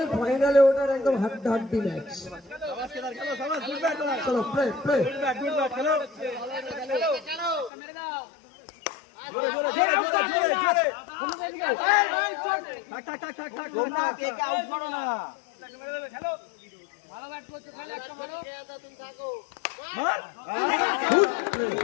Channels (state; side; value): drops out; right; at 7.7 s